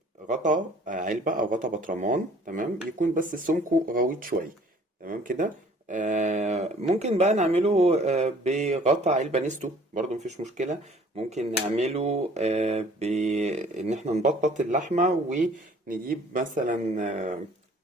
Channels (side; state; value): both; normal; correlation 0.54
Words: غطا علبة أو غطا برطمان، تمام، يكون بس سمكه غويط شوية، تمام كده. ممكن بقى نعمله بغطا علبة نستو، برضو مفيش مشكلة. ممكن نعمله بإن احنا نبطط اللحمة ونجيب مثلا